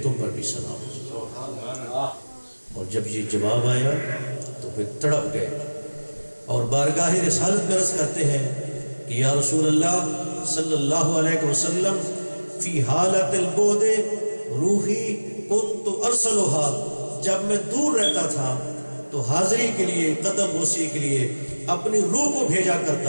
تم پر بھی سلام ہو۔ اور جب یہ جواب آیا تو پھر تڑپ گئے اور بارگاہ رسالت میں عرض کرتے ہیں کہ یا رسول اللہ صلی اللہ علیہ وسلم، فی حالت البعد روحی کنت ارسلها، جب میں دور رہتا تھا تو حاضری کے لیے، قدم بوسی کے لیے اپنی روح کو بھیجا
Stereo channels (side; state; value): both; inverted; correlation -1.00